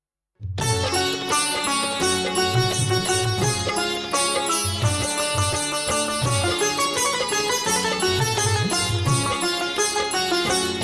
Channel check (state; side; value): identical; both; correlation 1.00